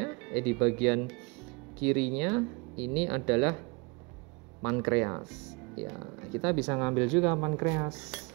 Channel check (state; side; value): quieter; left; 28.9 dB